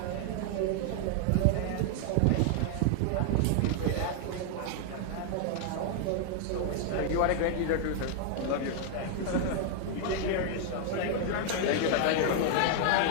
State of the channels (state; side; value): different; both; correlation 0.00